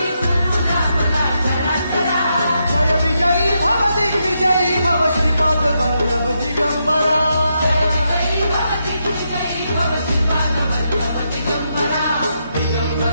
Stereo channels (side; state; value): both; inverted; correlation -0.82